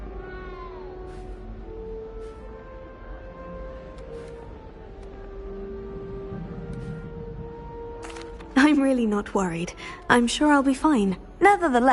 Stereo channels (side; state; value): both; identical; correlation 1.00